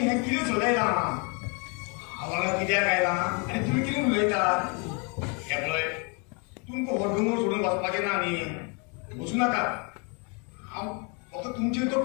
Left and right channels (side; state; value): right; quieter; 33.8 dB